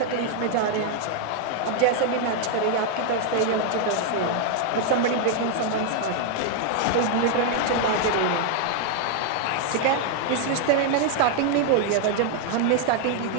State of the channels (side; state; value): both; different; correlation 0.00